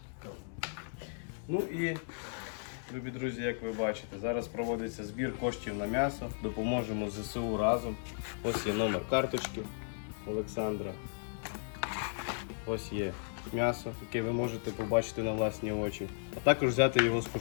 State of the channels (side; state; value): right; silent; digital silence